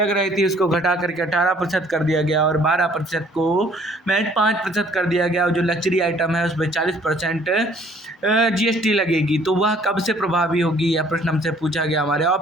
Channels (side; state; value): both; normal; correlation 0.59